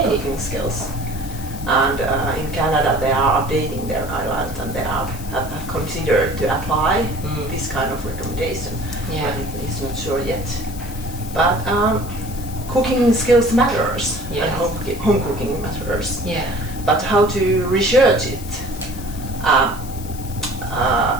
cooking skills. And in Canada, they are updating their guidelines, and they have considered to apply this kind of recommendation. But it's not sure yet. But cooking skills matters, and home cooking matters. But how to research it?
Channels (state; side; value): noise; left; hiss, 16 dB below the sound